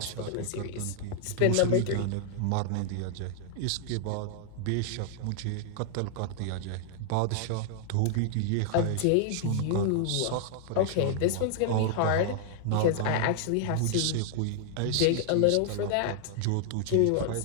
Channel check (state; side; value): different; both; correlation 0.00